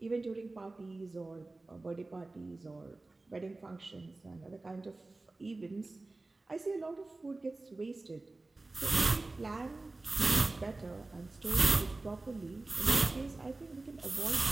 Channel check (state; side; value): quieter; left; 3.2 dB